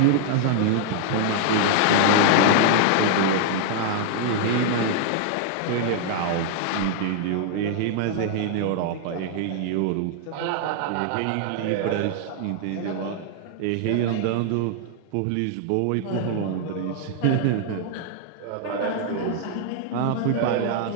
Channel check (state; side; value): different; both; correlation -0.01